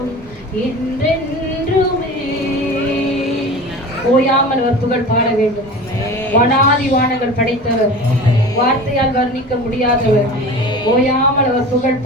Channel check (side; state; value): left; noise; hum, 29 dB below the sound